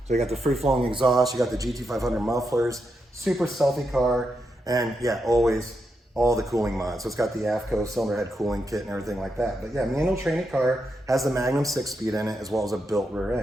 So you got the free-flowing exhaust, you got the GT 500 mufflers, super stealthy car, and yeah, always all the cooling mods. So it's got the AFCO cylinder head cooling kit and everything like that. But yeah, manual training car, has the Magnum 6-speed in it as well as a built rear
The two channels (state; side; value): normal; both; correlation 0.84